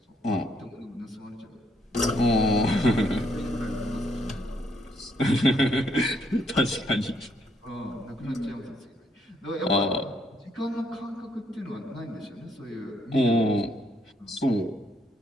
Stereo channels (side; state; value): both; normal; correlation 0.71